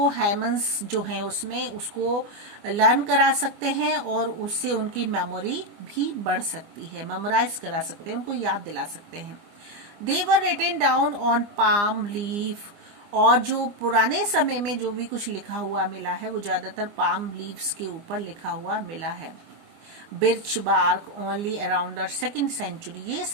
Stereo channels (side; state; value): left; late; 24 ms